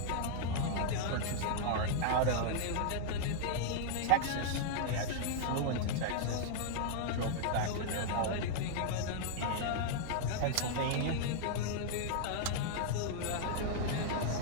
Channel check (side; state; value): both; different; correlation -0.01